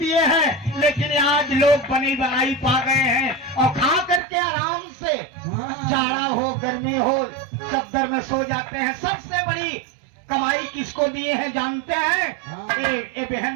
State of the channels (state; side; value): drops out; left; at 4.2 s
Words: हैं। लेकिन आज लोग बनी बनाई पा गए हैं और खा करके आराम से, जाड़ा हो गर्मी हो चद्दर में सो जाते हैं। सबसे बड़ी कमाई किसको दिए हैं जानते हैं? ये